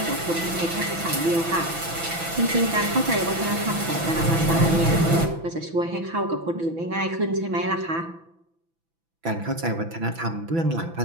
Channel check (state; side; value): late; left; 6.0 ms